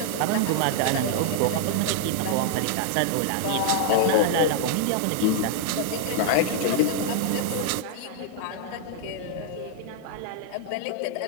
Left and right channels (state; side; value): different; both; correlation -0.01